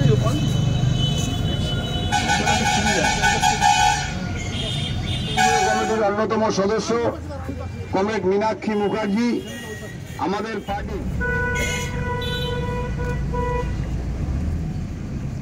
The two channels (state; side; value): identical; both; correlation 1.00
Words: কমিটির অন্যতম সদস্য কমরেড মীনাক্ষী মুখার্জি আমাদের পার্টি